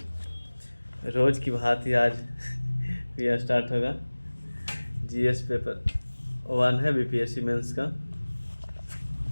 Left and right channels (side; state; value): both; inverted; correlation -1.00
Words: रोज़ की भांति आज यह स्टार्ट होगा। जीएस पेपर 1 है बीपीएससी मेंस का।